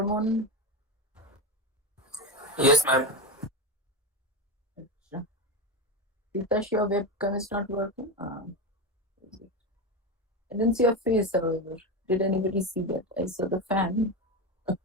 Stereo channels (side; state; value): both; normal; correlation 0.16